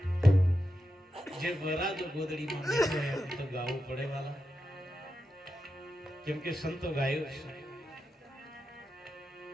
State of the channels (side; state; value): both; normal; correlation 0.88